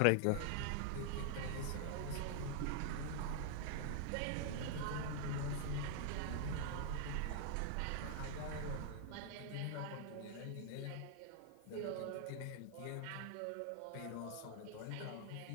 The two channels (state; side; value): different; both; correlation 0.00